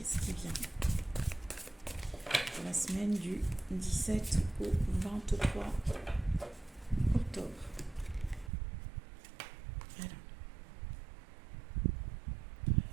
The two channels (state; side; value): drops out; left; at 8.5 s